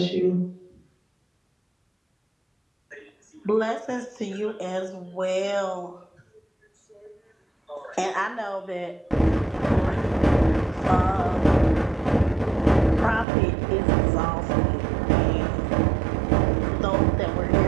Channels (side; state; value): left; drops out; at 13.2 s